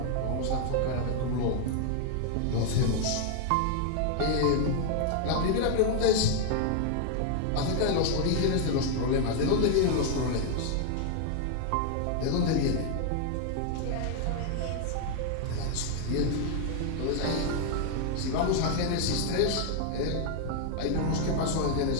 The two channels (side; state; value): both; different; correlation 0.00